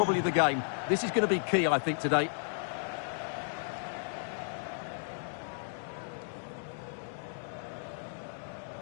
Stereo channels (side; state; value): right; silent; digital silence